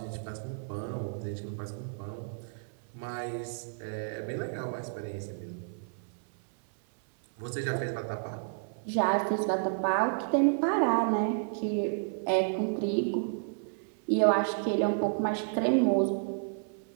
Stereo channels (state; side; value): silent; left; 57 dB below the other